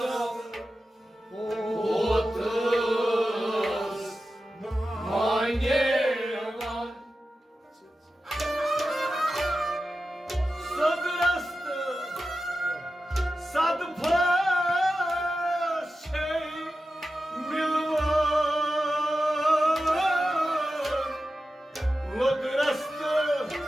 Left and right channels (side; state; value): both; normal; correlation 0.92